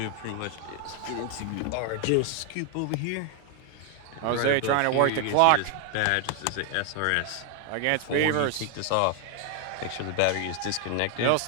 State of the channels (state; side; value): different; both; correlation 0.01